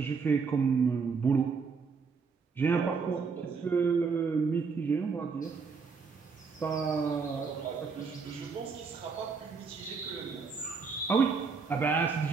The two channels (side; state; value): left; quieter; 5.2 dB